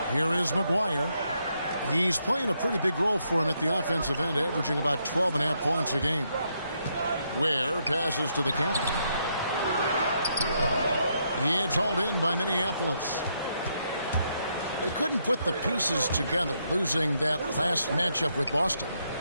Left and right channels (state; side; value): inverted; both; correlation -0.77